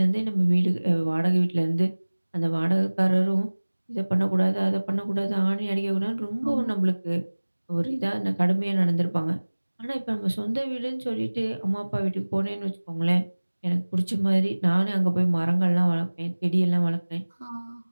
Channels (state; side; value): inverted; both; correlation -1.00